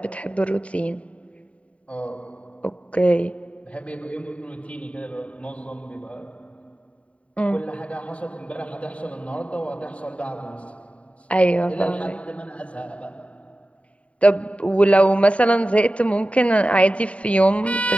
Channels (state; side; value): late; right; 0.065 ms